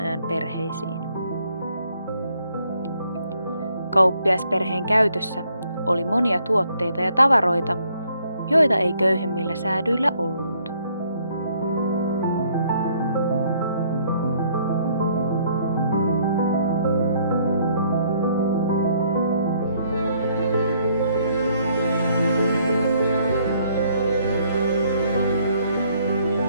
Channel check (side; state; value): both; inverted; correlation -0.67